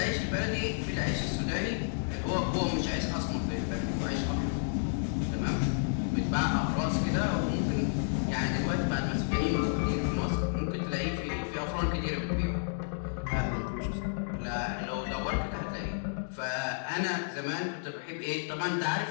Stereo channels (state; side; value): silent; right; digital silence